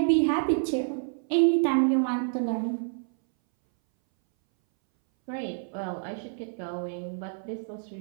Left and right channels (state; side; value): silent; left; 59 dB below the other